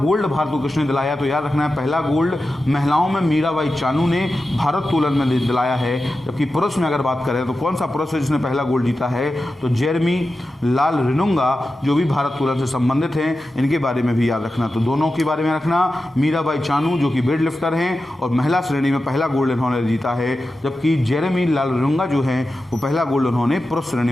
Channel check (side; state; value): both; normal; correlation 0.92